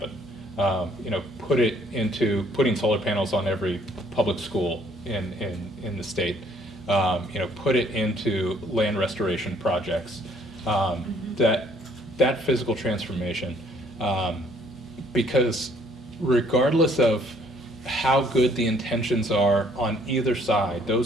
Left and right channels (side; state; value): both; normal; correlation 0.62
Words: Put it into putting solar panels on every public school in the state. Put it into land restoration projects. That physical transformation, because regardless of how good the intentions are on either side,